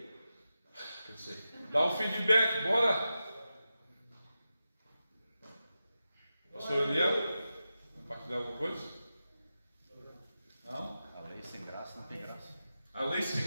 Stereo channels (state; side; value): inverted; both; correlation -0.91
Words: Dá um feedback, bora! Pastor Eliel, compartilhar alguma coisa? Não? A lei sem graça não tem graça. A lei